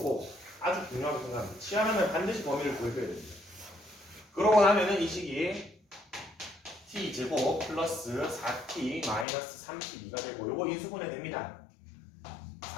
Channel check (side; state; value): right; drops out; at 9.2 s